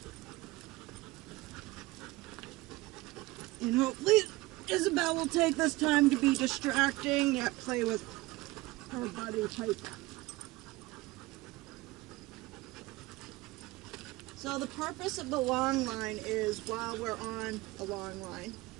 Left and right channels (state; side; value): quieter; left; 20.6 dB